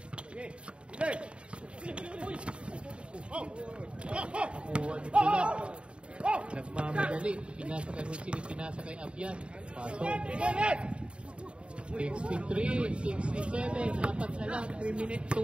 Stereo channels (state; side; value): late; left; 0.056 ms